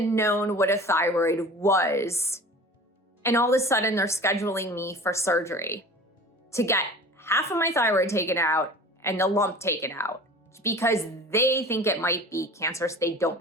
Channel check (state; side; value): normal; both; correlation 0.41